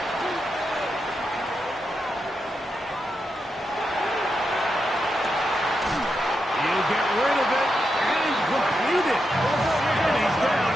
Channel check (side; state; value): both; normal; correlation 0.85